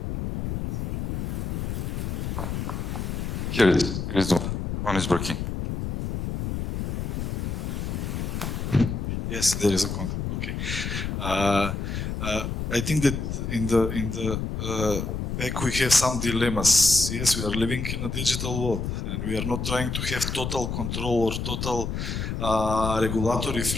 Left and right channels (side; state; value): left; noise; rumble, 3 dB below the sound